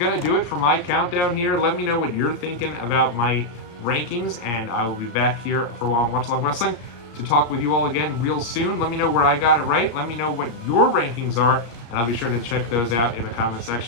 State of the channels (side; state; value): right; late; 34 ms